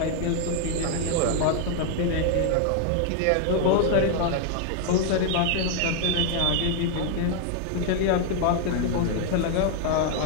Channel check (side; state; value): both; different; correlation 0.00